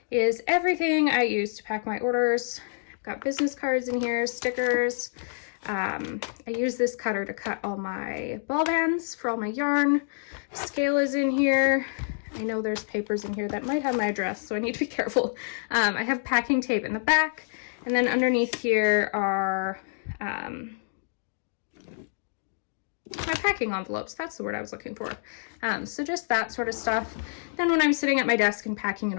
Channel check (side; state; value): right; silent; digital silence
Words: is everything I use to pack my orders. I've got business cards in here, stickers. I use this cutter to cut all my ball bands for all my yarn. Scale is in here. I know there's papers in here that might have my address, so I need to be careful. I have packing tape in the back, and then underneath here are my packing envelopes. That's the word I was looking for. So just that sort of stuff. Then when I'm sitting at my desk and packing an